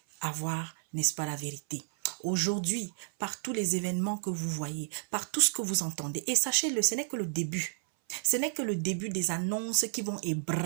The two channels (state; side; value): silent; left; 57 dB below the other